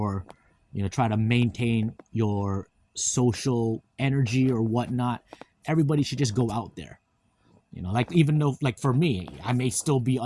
try to maintain your social energy or whatnot. Everybody should just go out there. Like, even though, like, for me, I may still be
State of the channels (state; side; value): identical; both; correlation 1.00